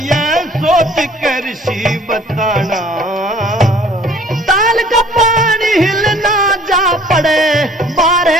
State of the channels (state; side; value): normal; both; correlation 0.54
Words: सोच के ऋषि बताना। ताल का पानी हिलना जा पड़े